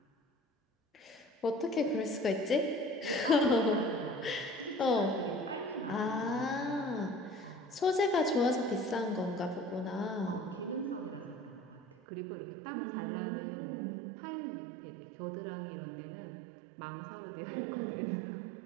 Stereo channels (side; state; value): left; drops out; at 12.0 s